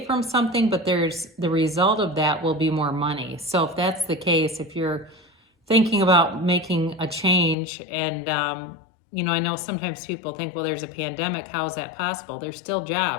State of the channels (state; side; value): drops out; right; at 7.6 s